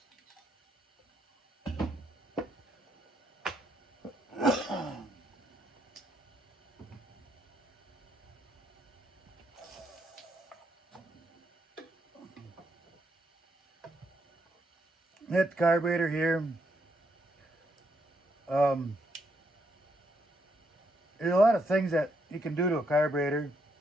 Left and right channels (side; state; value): both; normal; correlation 0.76